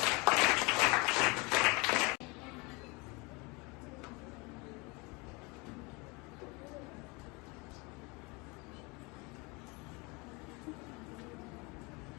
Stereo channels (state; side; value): quieter; right; 27.6 dB